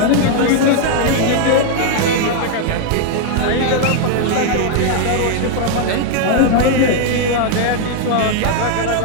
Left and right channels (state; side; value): different; both; correlation 0.00